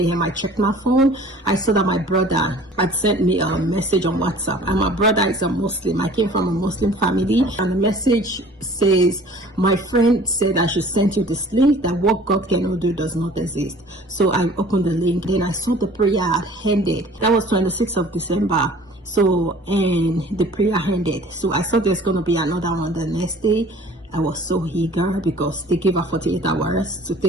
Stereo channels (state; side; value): normal; both; correlation 0.49